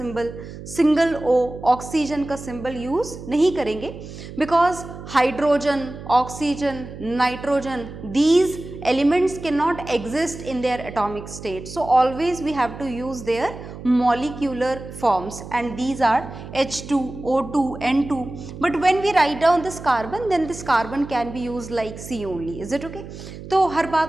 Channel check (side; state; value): right; noise; hum, 13 dB below the sound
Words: सिंगल O ऑक्सीजन का सिंबल यूज नहीं करेंगे, because hydrogen, oxygen, nitrogen, these elements cannot exist in their atomic state. So always we have to use their molecular forms, and these are H2, O2, N2. But when we write down this carbon, then this carbon can be used like C only. Is it okay? तो हर